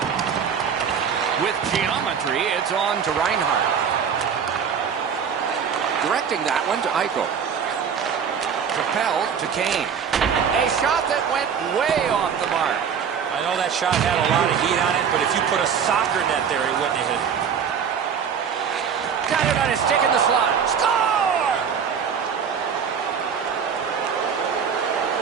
With geometry, it's on to Reinhart. Directing that one to Eichel. Propelled to Kane. A shot that went way off the mark. I know that shot had a lot of heat on it, but if you put a soccer net there, he wouldn't have hit it. Got it on his stick in the slot. Score!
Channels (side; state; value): left; quieter; 7.1 dB